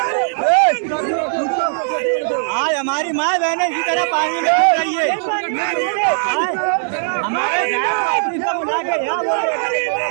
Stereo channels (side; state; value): left; silent; 62 dB below the other